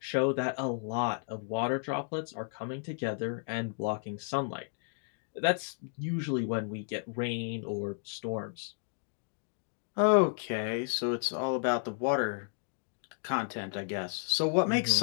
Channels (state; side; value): silent; right; 56 dB below the other